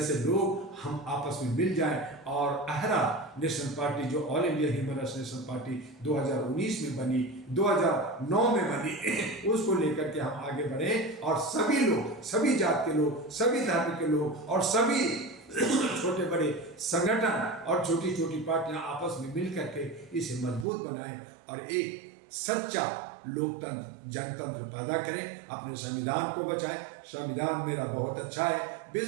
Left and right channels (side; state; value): left; drops out; at 20.7 s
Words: लोग, हम आपस में मिल जाएं, और अहरा नेशनल पार्टी जो all India human rights national party 2019 में बनी, 2009 में बनी, उसको लेकर के हम आगे बढ़े, और सभी लोग, सभी जात के लोग, सभी धर्म के लोग, और सभी छोटे बड़े संगठन और छोटी छोटी पार्टियां आपस में मिल करके इसे मजबूत बनाएं और एक सच्चा लोकतंत्र जनतंत्र पैदा करें, अपने संविधान को बचाएं। संविधान मेरा बहुत अच्छा है,